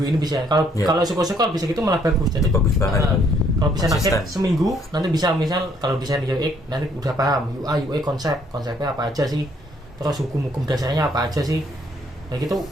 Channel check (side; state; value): both; normal; correlation 0.66